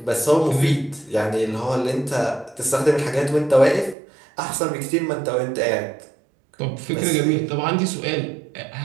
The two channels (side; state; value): left; drops out; at 4.0 s